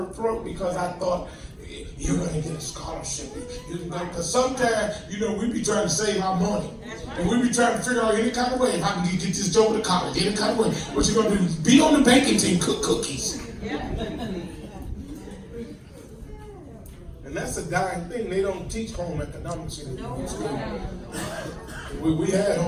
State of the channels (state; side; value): identical; both; correlation 1.00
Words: throat because I thought, you're going to get a scholarship. You can go, because sometimes, you know, we be trying to save our money. And we be trying to figure out any kind of way if I can get this job to college, any kind of way. What you going to do? Be on the baking team, cook cookies. And that's a dying thing. They don't teach home economics in school. We had